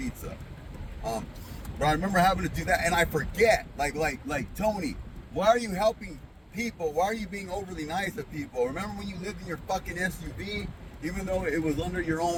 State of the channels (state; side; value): identical; both; correlation 1.00